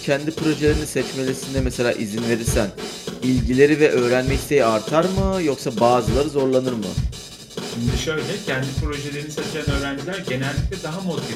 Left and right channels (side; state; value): both; identical; correlation 1.00